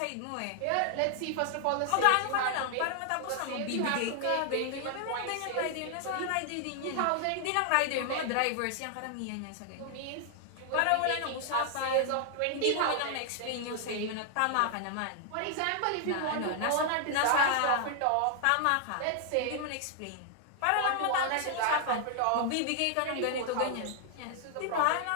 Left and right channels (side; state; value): both; different; correlation 0.00